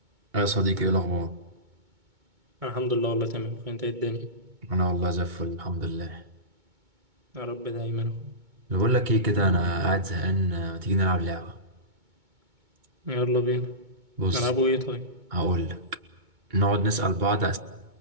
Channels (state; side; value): late; left; 2.2 ms